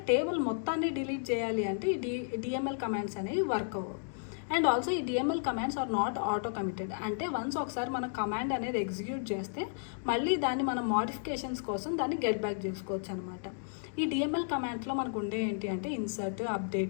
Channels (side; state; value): right; silent; digital silence